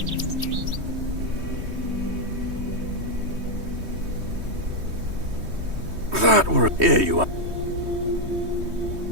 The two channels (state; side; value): late; left; 3.2 ms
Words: That were... Here you are.